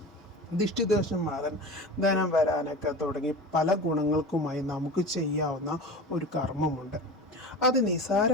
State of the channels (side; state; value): both; normal; correlation 0.32